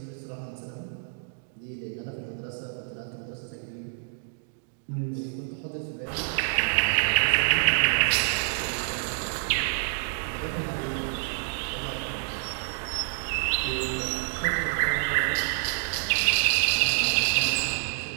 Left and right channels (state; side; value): silent; left; digital silence